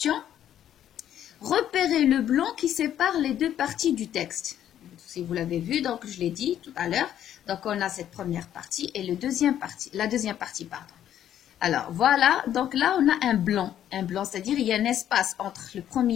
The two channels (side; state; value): right; quieter; 10.8 dB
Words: Repérez le blanc qui sépare les deux parties du texte. Si vous l'avez vu, donc je l'ai dit tout à l'heure. Donc, on a cette première partie et la deuxième partie, pardon. Alors, voilà. Donc là, on a un blanc, c'est-à-dire il y a un espace entre le